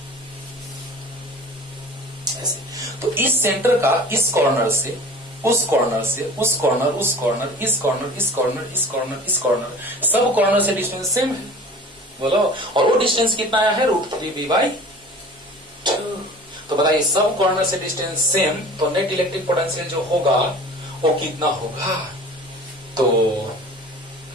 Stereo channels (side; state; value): both; normal; correlation 0.42